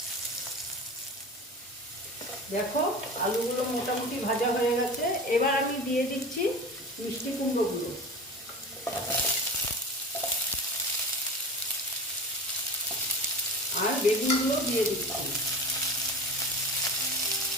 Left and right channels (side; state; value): both; normal; correlation 0.33